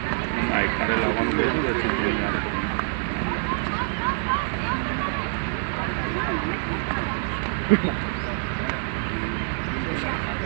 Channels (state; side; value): silent; left; 57 dB below the other